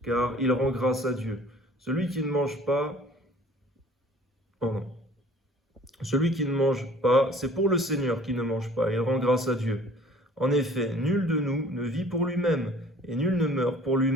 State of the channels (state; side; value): normal; both; correlation 0.51